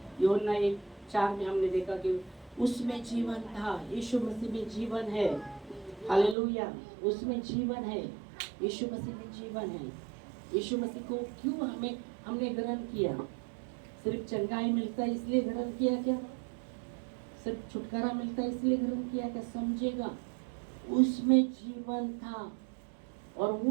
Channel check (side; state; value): left; drops out; at 6.4 s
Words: यूहन्ना 1:4 में हमने देखा कि उसमें जीवन था, यीशु मसीह में जीवन है। हालेलुया, उसमें जीवन है, यीशु मसीह में जीवन है। यीशु मसीह को क्यों हमने ग्रहण किया? सिर्फ चंगाई मिलता है इसलिए ग्रहण किया क्या? सिर्फ छुटकारा मिलता है इसलिए ग्रहण किया क्या? समझेगा, उसमें जीवन था और